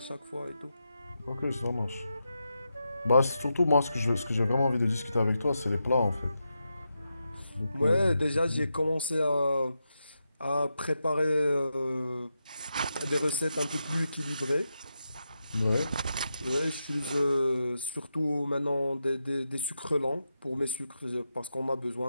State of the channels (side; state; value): both; inverted; correlation -0.87